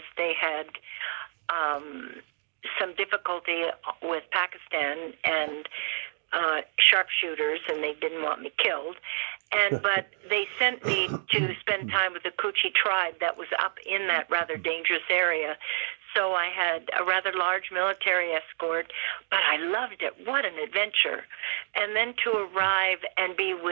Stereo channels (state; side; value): silent; left; digital silence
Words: they had some difficulty with Pakistan and sharpshooters, and they didn't want me killed. But they sent me to spend time with the Koochie tribe that was up in that rather dangerous area. So I had a rather large military escort, but I loved it. What an adventure. And then to arrive and be